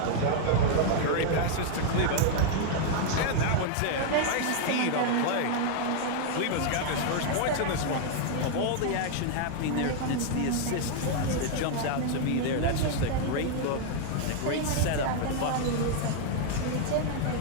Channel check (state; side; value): different; both; correlation 0.00